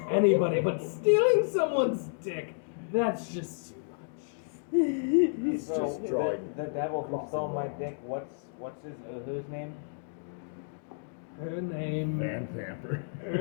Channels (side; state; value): right; silent; digital silence